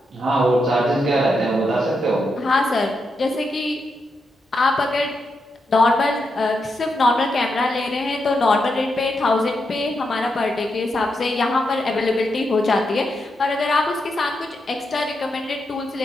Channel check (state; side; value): normal; both; correlation 0.84